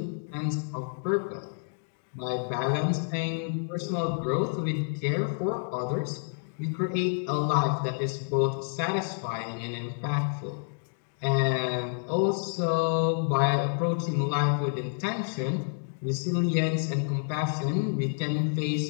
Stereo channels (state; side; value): silent; right; digital silence